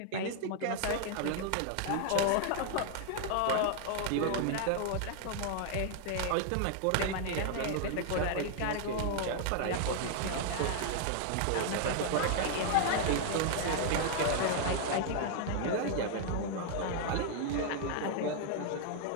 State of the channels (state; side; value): different; both; correlation 0.00